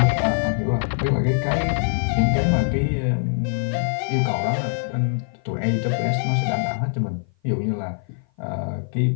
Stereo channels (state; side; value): silent; right; 56 dB below the other